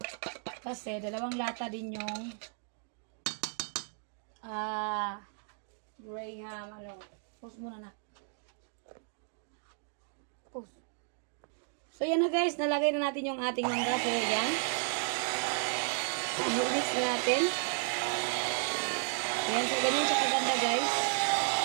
Kasi, dalawang lata din yung Graham, post muna na. Post. So, yan na guys. Nalagay na natin yung ating mangga. So, yan. Mix na natin. Yan. So, ganyan siya kaganda guys.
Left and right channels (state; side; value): silent; left; 55 dB below the other